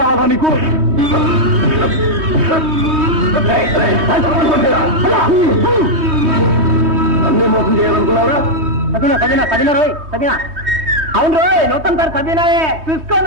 నీకు? అన్నీ మోసం చేయాలనుకున్నారా? అవును రోయ్, నూతన సార్ సబీనాయే.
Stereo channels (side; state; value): left; late; 3.2 ms